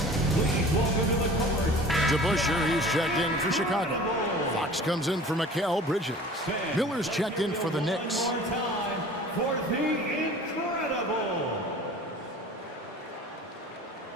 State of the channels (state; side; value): normal; both; correlation 0.43